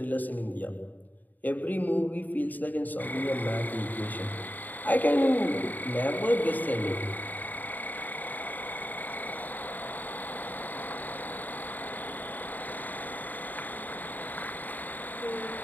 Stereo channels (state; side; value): late; right; 0.085 ms